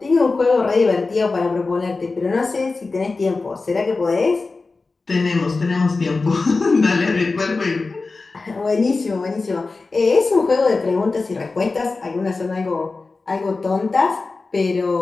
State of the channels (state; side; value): quieter; right; 3.8 dB